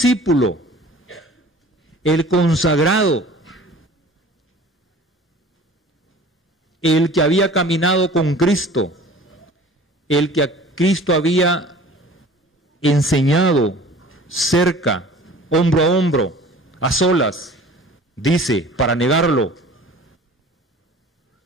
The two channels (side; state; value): both; normal; correlation 0.45